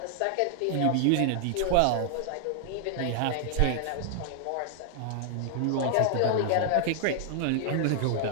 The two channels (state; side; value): different; both; correlation 0.00